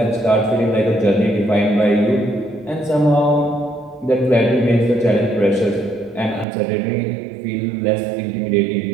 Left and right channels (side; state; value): left; drops out; at 6.5 s